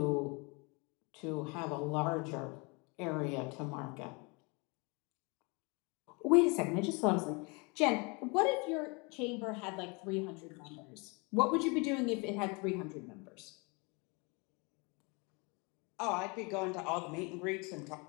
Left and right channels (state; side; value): quieter; right; 30.0 dB